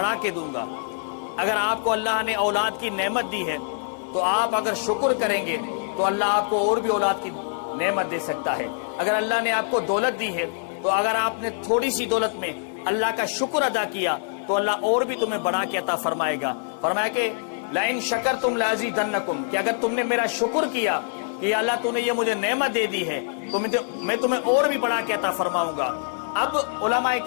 کے دوں گا۔ اگر آپ کو اللہ نے اولاد کی نعمت دی ہے تو آپ اگر شکر کریں گے تو اللہ آپ کو اور بھی اولاد کی نعمت دے سکتا ہے۔ اگر اللہ نے آپ کو دولت دی ہے تو اگر آپ نے تھوڑی سی دولت میں اللہ کا شکر ادا کیا تو اللہ اور بھی تمہیں بڑھا کے عطا فرمائے گا۔ فرمایا کہ لَإِن شَكَرْتُمْ لَأَزِيدَنَّكُمْ، کہ اگر تم نے میرا شکر کیا کہ اللہ تو نے یہ مجھے نعمت دے دی ہے تو میں تمہیں اور بھی بڑھا کے عطا فرماؤں گا۔ اب علماء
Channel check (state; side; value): silent; right; 61 dB below the other